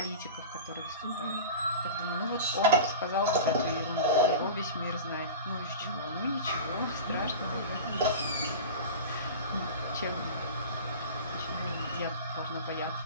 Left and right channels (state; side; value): inverted; both; correlation -0.30